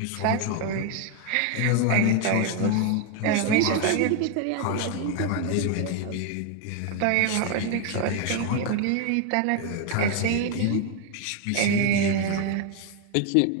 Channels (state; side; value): different; both; correlation 0.01